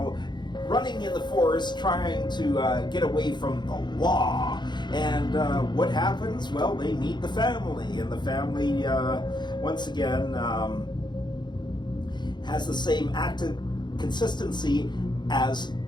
running in the forest trying to get away from the law. And what happens? Well, they meet the family, and the family, once again, has the same active consistency as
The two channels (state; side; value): late; right; 0.21 ms